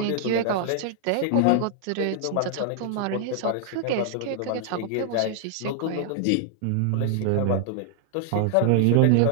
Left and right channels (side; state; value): both; different; correlation -0.01